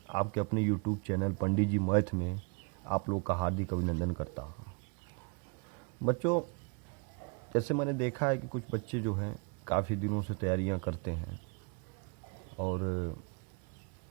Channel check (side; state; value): left; quieter; 33.8 dB